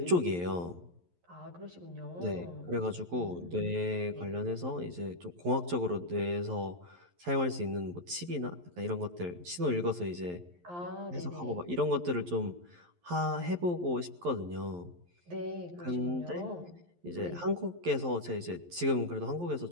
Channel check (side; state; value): left; late; 11 ms